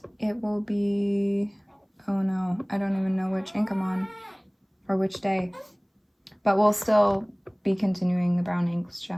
it will be, oh no, I don't even know which ink I'm on or which day. But we'll still be continuing the brown inks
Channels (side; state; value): both; identical; correlation 1.00